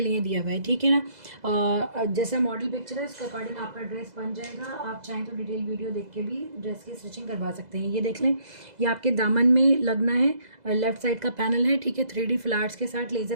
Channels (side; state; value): left; late; 2.0 ms